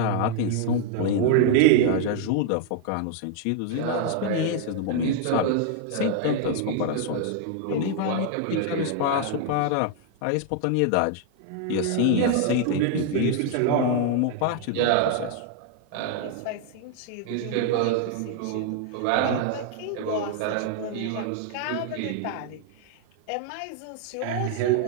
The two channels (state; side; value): different; both; correlation 0.00